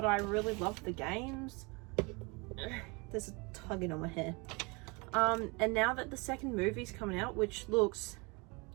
I really love the games. There's a tugging on my hair. And now that the second movie's coming out, which looks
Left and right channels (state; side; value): quieter; left; 28.6 dB